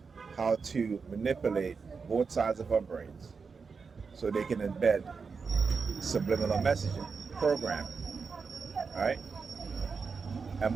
How to manipulate both sides of our brains so they can embed subliminal messaging, programming, right? And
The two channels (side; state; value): left; quieter; 5.2 dB